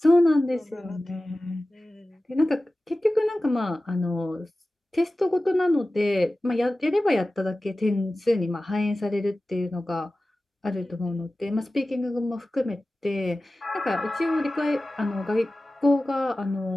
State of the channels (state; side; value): normal; both; correlation 0.96